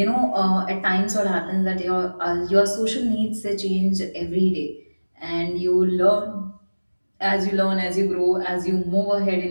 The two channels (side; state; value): both; inverted; correlation -1.00